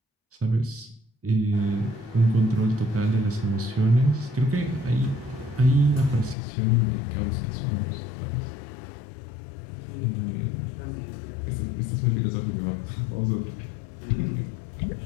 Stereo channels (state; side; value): drops out; right; at 6.4 s